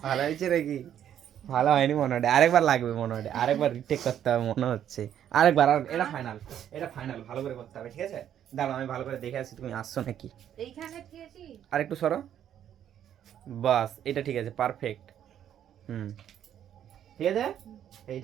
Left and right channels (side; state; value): left; quieter; 10.1 dB